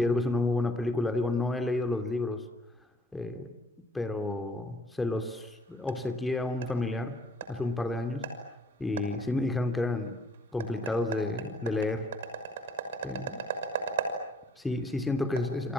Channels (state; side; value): normal; both; correlation 0.61